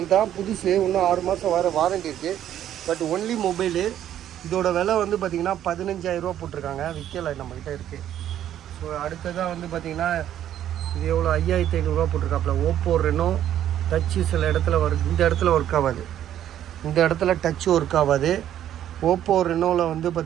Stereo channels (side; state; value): left; quieter; 11.1 dB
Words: தான், புதுசு. இன்னும் 6 மாதம் வர வாரண்டி இருக்குது. But only mobile. இதோட விலை வந்து பார்த்திங்கன்னா 15,000 போட்டிருக்காங்க. விற்கலை, நம்மக்கிட்ட இருக்குது. ஸோ அடுத்ததாக வந்து பார்த்திங்கன்னா இது எவ்வளோ, 5,500 போட்டிருக்காப்புல. ஓப்போ ரெனோ டச்சு சில இடத்துல இந்த இடத்துல ஒர்க் ஆகாது. இந்த இடத்துல டச்சு ஒர்க் ஆகாது. ஓப்போ ரெனோவில் வந்து